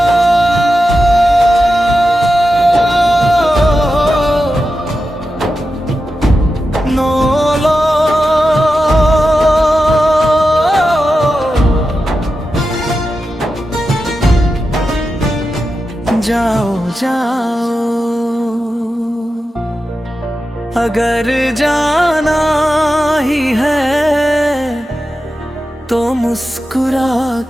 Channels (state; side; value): normal; both; correlation 0.91